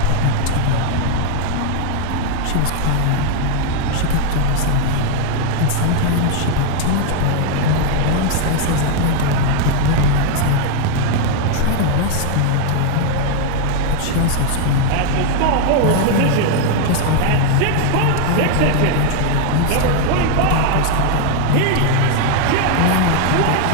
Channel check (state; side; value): different; both; correlation 0.00